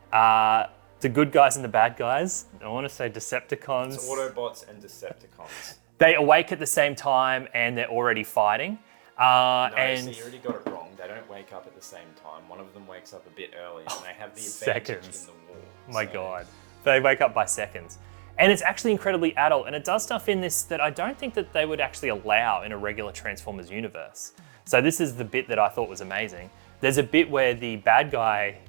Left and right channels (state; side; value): silent; left; digital silence